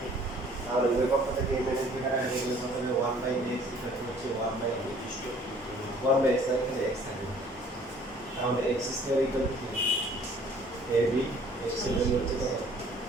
তাহলে উভয় পক্ষ থেকে a মাইনাস b কাটাকাটি করলে কত হবে? 1 বাই x ইকুয়াল হচ্ছে 1 বাই 1 বাই x, তাহলে x থাকবে। তাহলে x স্কয়ার ইকুয়াল টু কি? ab x এর ভ্যালু হচ্ছে কত?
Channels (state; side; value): normal; both; correlation 0.55